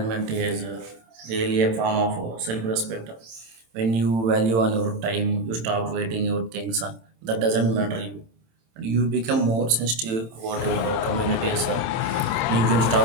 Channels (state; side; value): late; left; 27 ms